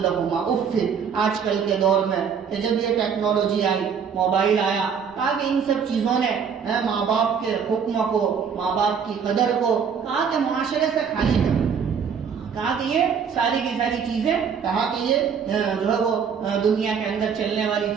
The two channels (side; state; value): left; quieter; 6.8 dB